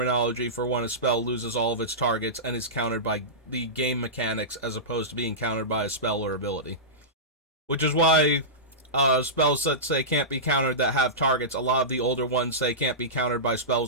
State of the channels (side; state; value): both; normal; correlation -0.17